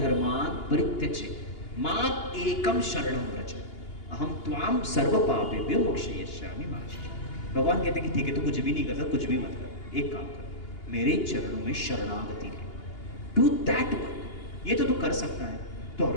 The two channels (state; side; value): late; right; 2.8 ms